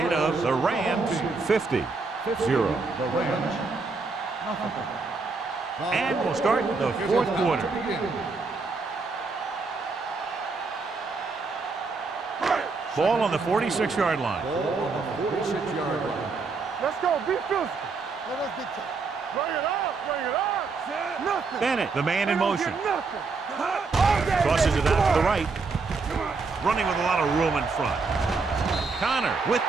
of the Rams 50-0. The Rams, nothing. And we'll start the fourth quarter. Ball on the 46-yard line. Ball on the 46-yard line. Let's go. Be physical. Let us be tough. Bring it up. Bring it up. Nothing. Bennett, the man in motion. Nothing. Tosses it out to the right. Running with a lot of room in front. Connor with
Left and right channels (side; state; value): left; quieter; 4.3 dB